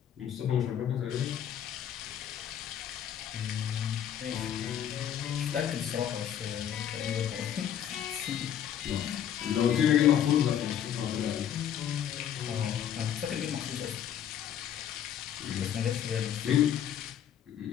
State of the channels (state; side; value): quieter; right; 9.7 dB